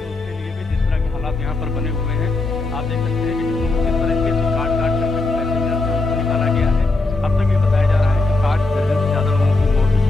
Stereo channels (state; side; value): quieter; right; 3.3 dB